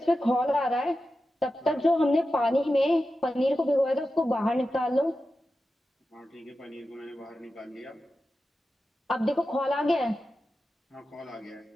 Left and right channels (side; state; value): both; normal; correlation 0.92